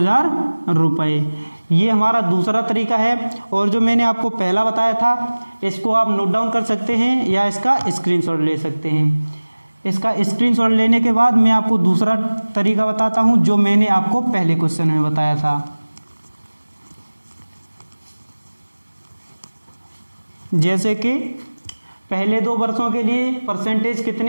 रुपये। ये हमारा दूसरा तरीका है। और जो मैंने आपको पहला बताया था इसको आप नोट डाउन कर सकते हैं या इसका स्क्रीनशॉट ले सकते हैं। इसका स्क्रीनशॉट लेने के बाद मैं आपको दूसरा तरीका बताता हूँ जो मैंने आपको पहले क्वेश्चन में बताया था। जैसे कि पहले 2 वर्षों के लिए परसेंटेज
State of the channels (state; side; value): inverted; both; correlation -1.00